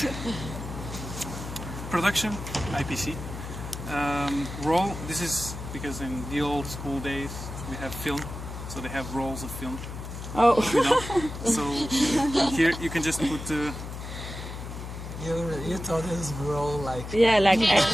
production, IPC. Roll, this is because in the old school days we have film, so they have rolls of film. Oh. You know? So here you can just put You thought this role like Yeah, like Yeah,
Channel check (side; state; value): left; noise; hum, 9 dB below the sound